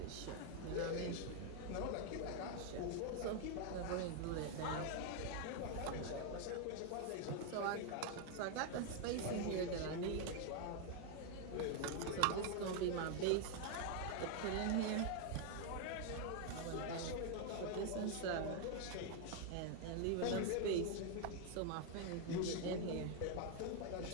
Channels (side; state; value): both; different; correlation 0.00